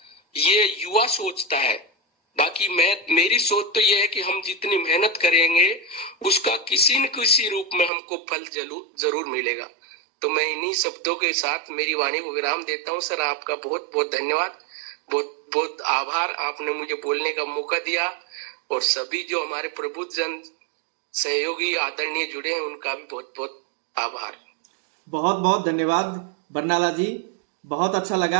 ये युवा सोचता है। बाकी मेरी सोच तो ये है कि हम जितनी मेहनत करेंगे उसका किसी न किसी रूप में हमको फल जरूर मिलेगा। तो मैं इन्हीं शब्दों के साथ मेरी वाणी को विराम देता हूँ। सर आपका बहुत बहुत धन्यवाद, बहुत बहुत आभार, आपने मुझे बोलने का मौका दिया, और सभी जो हमारे प्रबुद्ध जन सहयोगी आदरणीय जुड़े हैं उनका भी बहुत बहुत आभार। बहुत बहुत धन्यवाद बरनाला जी, बहुत अच्छा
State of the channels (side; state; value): left; drops out; at 7.9 s